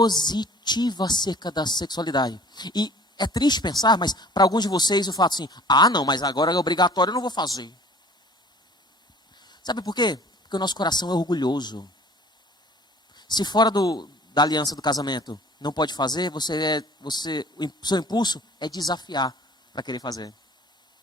acerca da sexualidade. E é triste pensar, mas para alguns de vocês eu falo assim, não, mas agora é obrigatório, eu não vou fazer. Sabe por quê? Porque o nosso coração é orgulhoso. Se fora da aliança do casamento não pode fazer, o seu impulso é desafiar para querer fazer.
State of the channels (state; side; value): normal; both; correlation 0.49